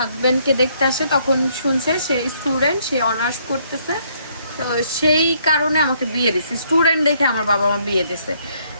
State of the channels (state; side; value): inverted; both; correlation -0.68